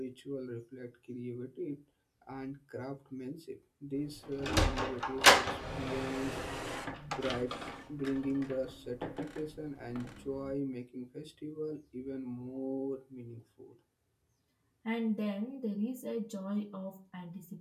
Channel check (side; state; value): both; identical; correlation 1.00